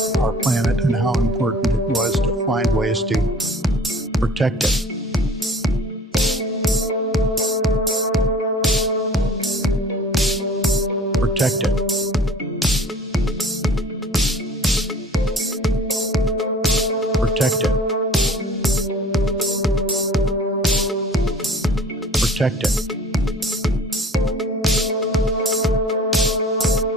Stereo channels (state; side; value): normal; both; correlation 0.47